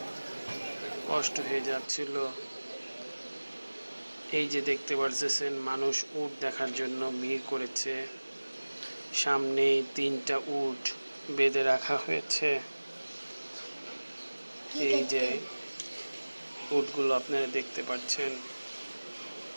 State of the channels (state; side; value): inverted; both; correlation -1.00